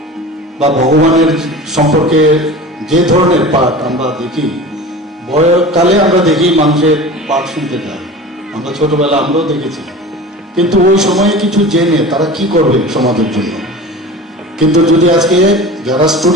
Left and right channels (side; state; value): both; normal; correlation 0.36